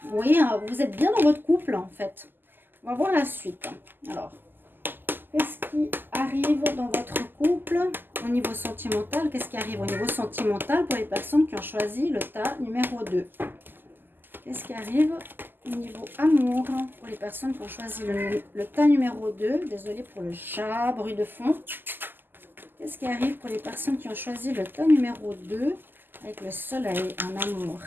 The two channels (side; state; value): left; late; 0.093 ms